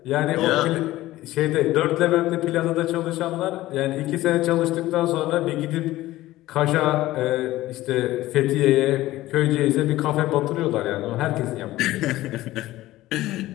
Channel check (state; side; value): quieter; right; 16.4 dB